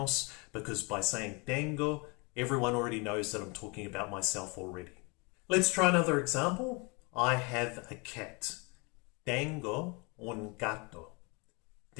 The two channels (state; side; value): quieter; right; 29.7 dB